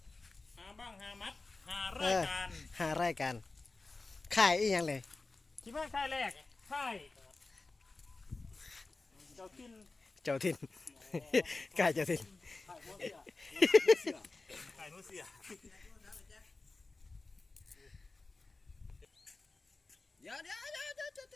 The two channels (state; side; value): quieter; right; 3.5 dB